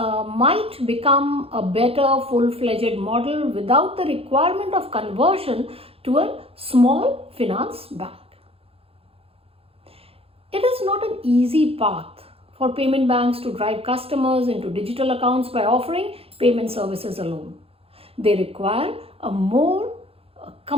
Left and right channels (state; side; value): late; left; 0.28 ms